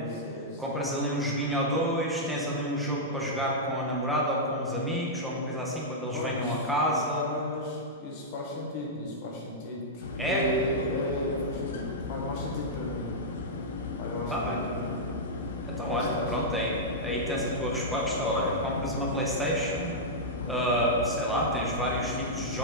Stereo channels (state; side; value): normal; both; correlation -0.09